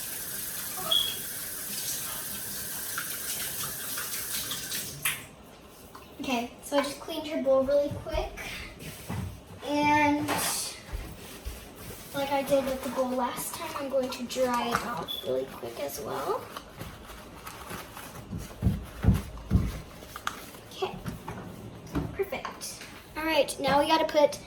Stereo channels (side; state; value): both; identical; correlation 1.00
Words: Okay, so I just cleaned her bowl really quick. And like I did with the bowl last time, I'm going to dry it off really quick as well. Okay, perfect. All right, now we gotta put